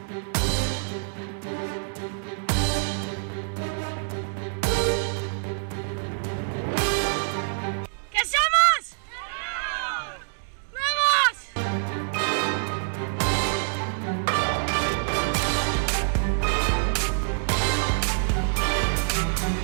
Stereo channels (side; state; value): left; silent; digital silence